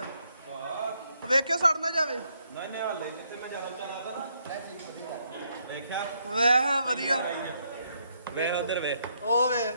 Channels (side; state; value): both; inverted; correlation -0.75